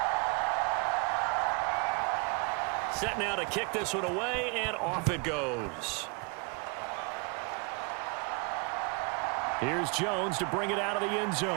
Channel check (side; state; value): left; quieter; 33.1 dB